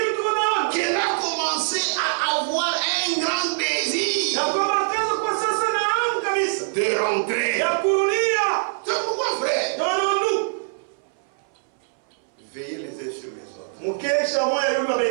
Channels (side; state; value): left; silent; 60 dB below the other